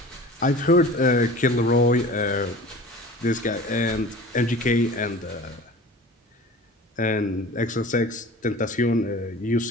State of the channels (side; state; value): both; normal; correlation 0.40